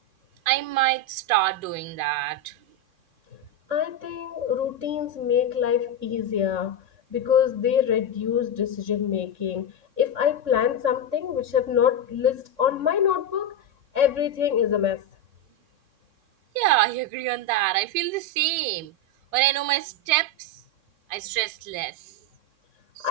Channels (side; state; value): left; late; 3.6 ms